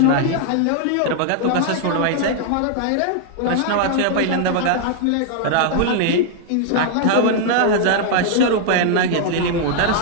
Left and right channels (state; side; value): different; both; correlation 0.00